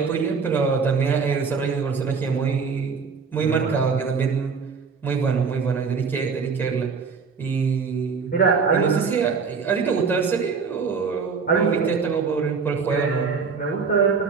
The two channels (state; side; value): quieter; left; 5.4 dB